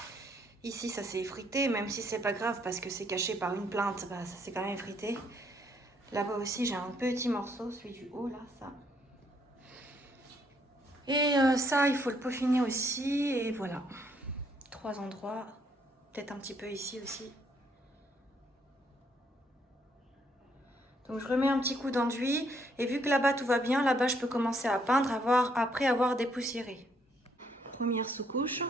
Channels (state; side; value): normal; both; correlation 0.70